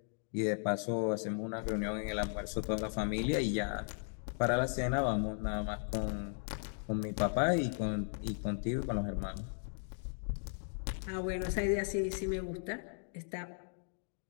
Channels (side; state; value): right; silent; digital silence